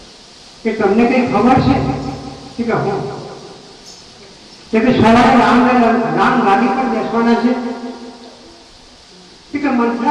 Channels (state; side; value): identical; both; correlation 1.00